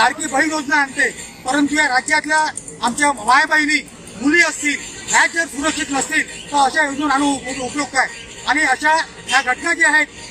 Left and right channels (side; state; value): both; identical; correlation 1.00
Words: बहीण योजना आणते, परंतु या राज्यातल्या आमच्या मायबहिणी मुली असतील ह्या जर सुरक्षित नसतील तर अशा योजना आणून उपयोग काय। आणि अशा ह्या घटना ज्या आहेत